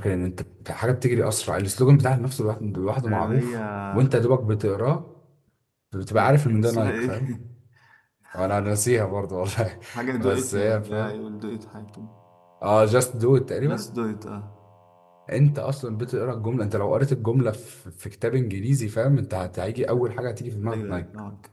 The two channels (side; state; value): both; identical; correlation 1.00